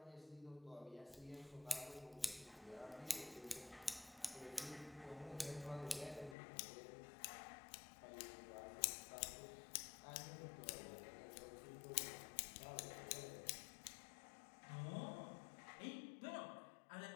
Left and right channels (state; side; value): drops out; right; at 6.4 s